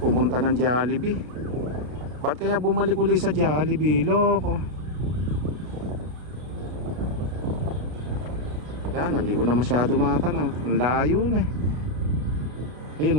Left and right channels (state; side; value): late; left; 33 ms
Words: ng Jollibee. Ba't kaya bumalik uli sa Jollibee? Loko. Yan, hindi ko na masyado matanaw. Ang layo na eh.